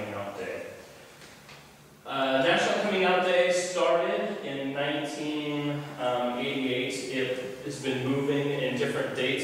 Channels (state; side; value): identical; both; correlation 1.00